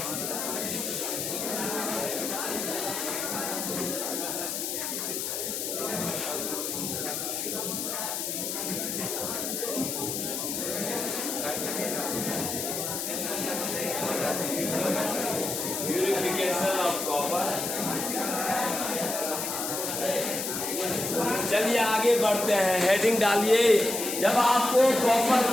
Purification of copper. चलिए आगे बढ़ते हैं, हेडिंग डालिए। जब आपको कॉपर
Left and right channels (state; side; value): noise; left; hiss, 3 dB below the sound